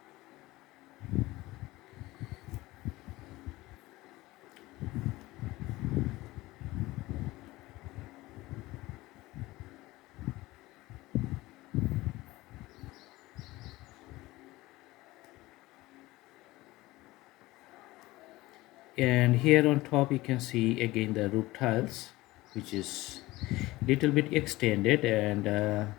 And here on top you can see again the roof tiles, which is little bit extended, and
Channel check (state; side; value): quieter; right; 19.1 dB